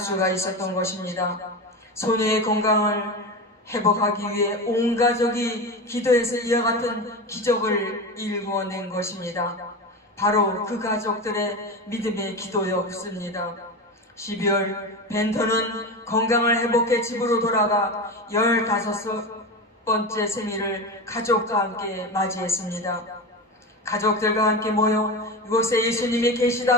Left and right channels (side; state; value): both; normal; correlation 0.23